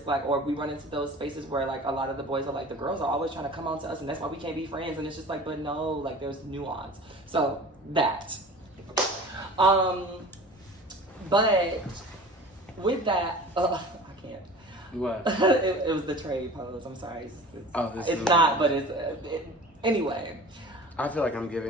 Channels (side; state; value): both; normal; correlation 0.40